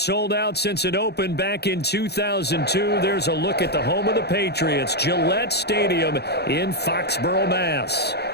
out since it opened back in 2002, there's a look at the home of the Patriots, Gillette Stadium in Foxborough, Mass.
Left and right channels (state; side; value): late; right; 0.48 ms